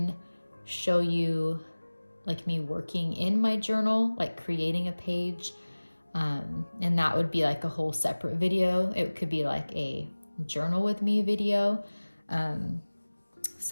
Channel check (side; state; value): both; inverted; correlation -1.00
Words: show you like me working in my journal, like creating a page. And that would be like a whole separate video. It could be like a journal with me video.